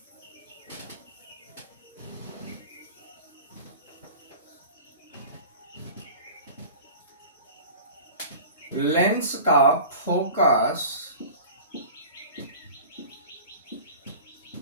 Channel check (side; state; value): both; inverted; correlation -0.39